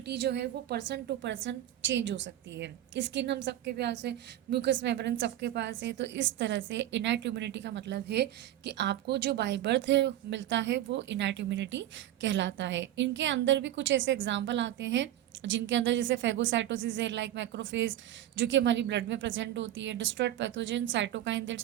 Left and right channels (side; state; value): left; quieter; 12.8 dB